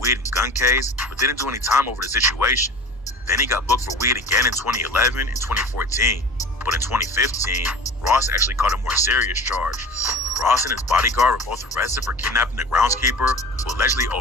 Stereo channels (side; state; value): both; normal; correlation 0.39